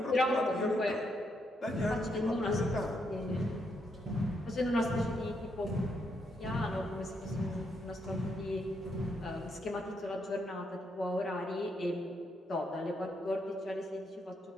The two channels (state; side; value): normal; both; correlation 0.78